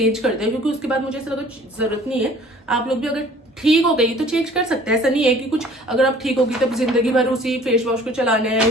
कर दिया, क्योंकि उसके बाद मुझे ऐसा लगा जरूरत नहीं है। आप लोग भी अगर ठीक हो गई तो चेंज कर सकते हैं, ऐसा नहीं है कि कुछ अगर आप ठीक होगी तब जिंदगी भर उसी फेस वॉश को चलाना है,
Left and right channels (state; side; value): normal; both; correlation 0.51